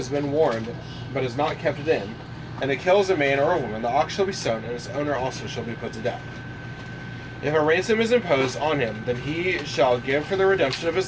been warned, but has not kept it in, and it kills a man or a woman, the ox shall be stoned, and its owner also shall be put to death. If a ransom is imposed on him, then he shall give for the redemption of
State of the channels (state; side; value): identical; both; correlation 1.00